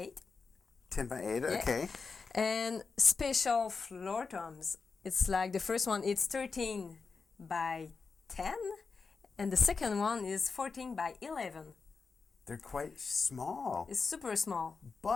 10/8, okay. And special floor toms. It's like the first one. It's 13/10, and the second one is 14/11. They're quite small. It's super small.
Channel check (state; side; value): quieter; right; 4.8 dB